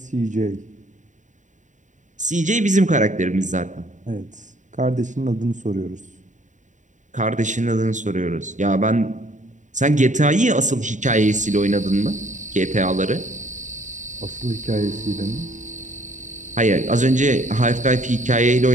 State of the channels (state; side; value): late; left; 0.36 ms